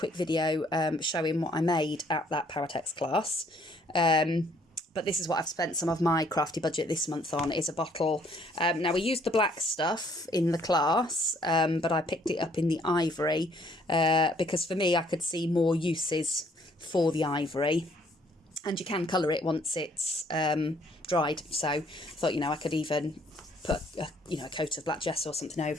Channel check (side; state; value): both; normal; correlation 0.64